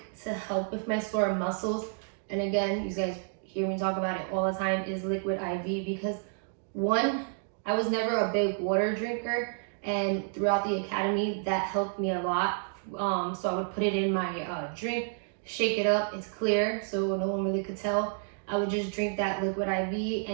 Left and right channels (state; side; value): silent; left; 58 dB below the other